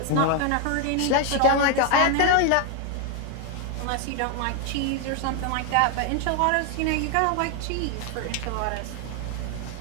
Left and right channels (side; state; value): both; different; correlation 0.01